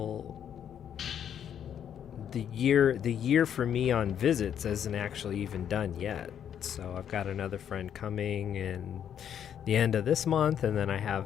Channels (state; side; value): quieter; right; 9.1 dB